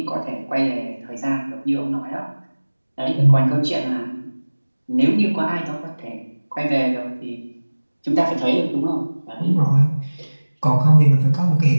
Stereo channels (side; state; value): both; inverted; correlation -1.00